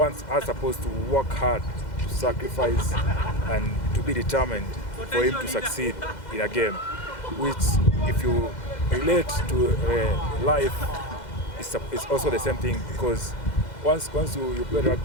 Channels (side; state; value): right; late; 2.0 ms